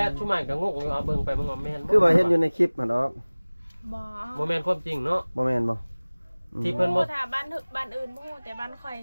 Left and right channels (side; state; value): both; inverted; correlation -1.00